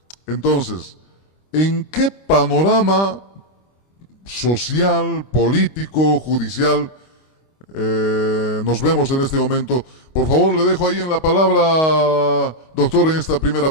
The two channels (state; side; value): late; right; 25 ms